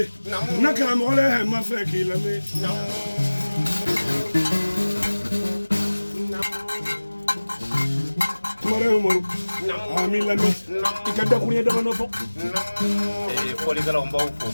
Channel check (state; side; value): inverted; both; correlation -1.00